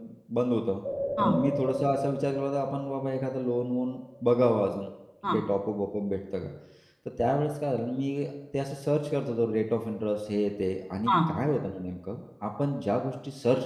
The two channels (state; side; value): identical; both; correlation 1.00